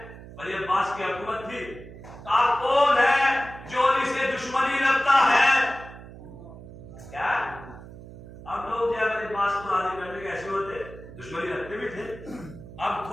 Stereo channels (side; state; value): right; noise; hum, 16 dB below the sound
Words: ولی عباس کی حکومت تھی، کہا کون ہے جو علی سے دشمنی رکھتا ہے. کیا اب لوگ جو ہے ولی عباس کو راضی کرنے کے ایسے ہوتے، دشمنی رکھتے بھی تھے. اب